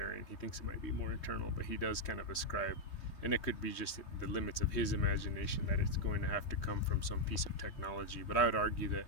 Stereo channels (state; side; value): late; right; 3.2 ms